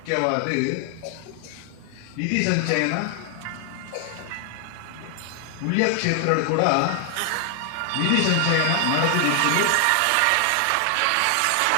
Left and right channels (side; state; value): both; different; correlation 0.00